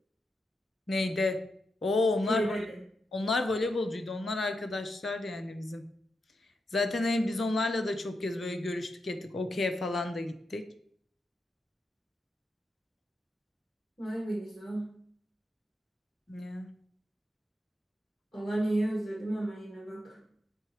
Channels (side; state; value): both; normal; correlation 0.86